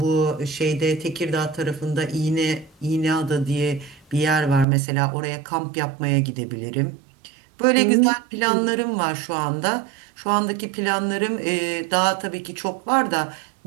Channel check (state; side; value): drops out; left; at 4.7 s